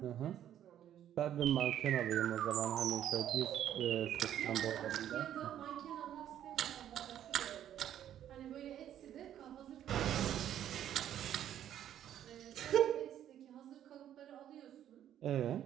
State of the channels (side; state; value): left; quieter; 10.8 dB